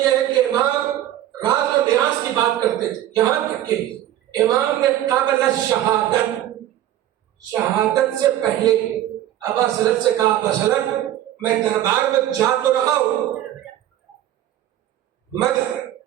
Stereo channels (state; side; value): quieter; left; 12.6 dB